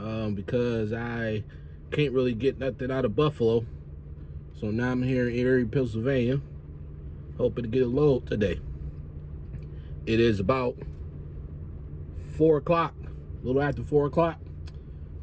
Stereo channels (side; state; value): both; identical; correlation 1.00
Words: because I can't really get nothing out of Buffalo. So now I'm here in Erie, Pennsylvania, hoping to get a load today. It is about 4 o'clock, a little after 4 o'clock.